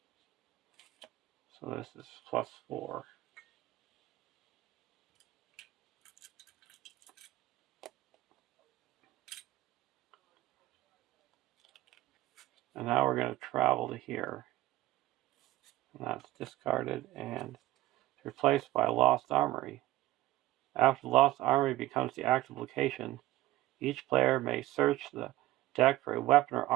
So this is plus 4. And now we're going to travel to here. And that's discarded and replaced by Lost Armory. After the Lost Armory becomes the active location, each player may search the deck for a weapon or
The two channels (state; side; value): quieter; left; 16.4 dB